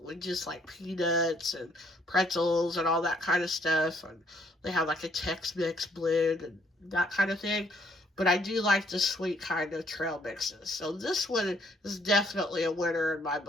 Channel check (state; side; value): normal; both; correlation 0.66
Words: with just like peanuts and pretzels and all that kind of stuff. And they have like a Tex-Mex blend and that kind of thing. But I do like the sweet kind of trail mixes. So this one is definitely a winner in my